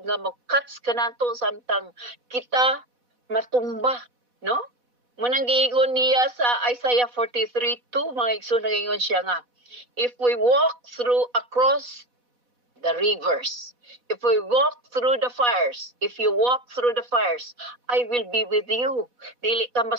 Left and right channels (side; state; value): left; late; 4.1 ms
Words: nga mo-cuts kanato samtang kita matumba, no? Munang giingon niya sa Isaiah 43:2 mga igsoon nagaingon siya nga, if we walk across the rivers, if we walk through the fires, if you walk through the fires, I will be with you. Dili ka